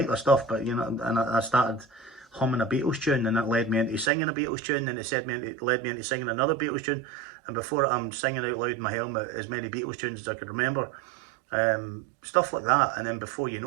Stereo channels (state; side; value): drops out; left; at 4.1 s